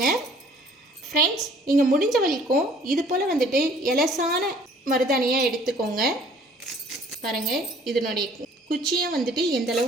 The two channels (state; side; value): normal; both; correlation 0.55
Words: ஃப்ரெண்ட்ஸ். நீங்கள் முடிஞ்ச வரைக்கும் இது போல் வந்துட்டு எலசான மருதாணியாக எடுத்துக்கோங்க. பாருங்கள், இதனுடைய குச்சியும் வந்துட்டு எந்த